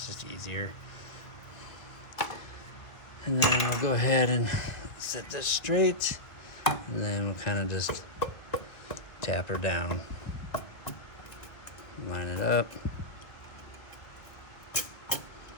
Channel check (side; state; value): right; late; 1.5 ms